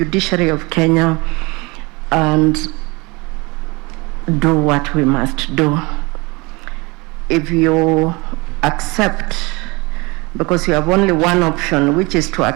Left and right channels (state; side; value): quieter; left; 25.7 dB